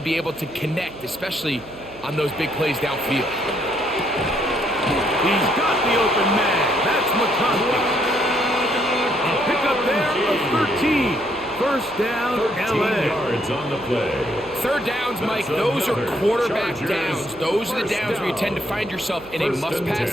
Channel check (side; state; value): right; noise; hum, 21 dB below the sound